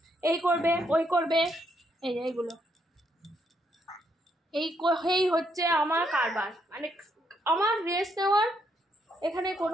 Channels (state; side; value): normal; both; correlation 0.75